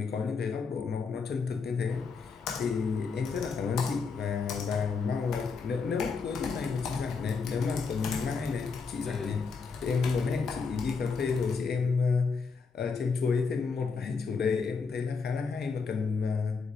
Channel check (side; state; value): right; quieter; 5.1 dB